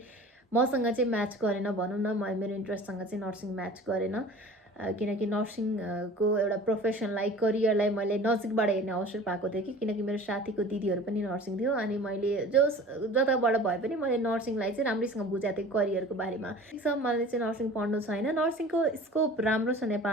मसँग चाहिँ म्याच गरेन भनौँ न, मेरो इन्ट्रेस्टसँग चाहिँ नर्सिङ म्याच गरेन। किनकि नर्सिङको एउटा प्रोफेसनलाई, करियरलाई मैले नजिकबाट हेर्ने अवसर पाएको थिएँ कि, किनकि मेरो साथीको दिदीहरू पनि नर्सिङ थियो। अनि मैले जताबाट भए पनि मैले नर्सिङलाई चाहिँ राम्रैसँग बुझाएको थिएँ करियरको बारेमा। मलाई चाहिँ नर्सिङ पढ्नु छैन। नर्सिङको स्कोप राम्रो छ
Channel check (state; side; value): normal; both; correlation 0.42